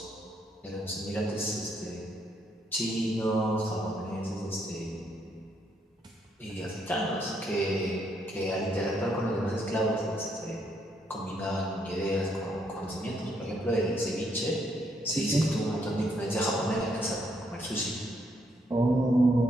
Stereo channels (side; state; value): both; normal; correlation 0.73